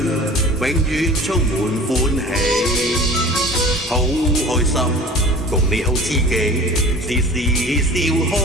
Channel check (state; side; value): normal; both; correlation 0.42